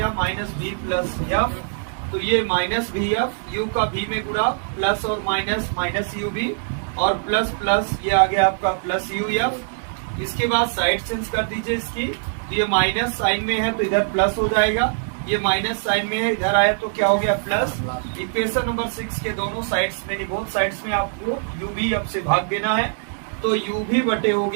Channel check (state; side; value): silent; left; digital silence